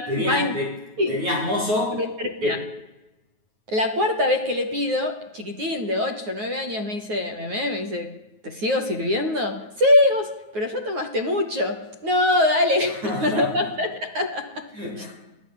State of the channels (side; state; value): left; late; 9.4 ms